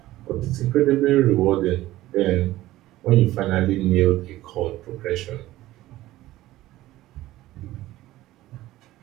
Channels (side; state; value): left; quieter; 16.0 dB